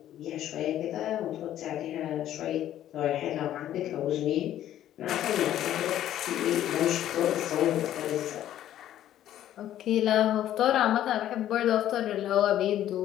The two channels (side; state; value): right; quieter; 12.0 dB